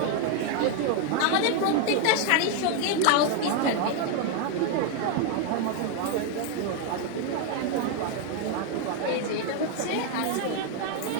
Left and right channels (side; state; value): both; different; correlation 0.01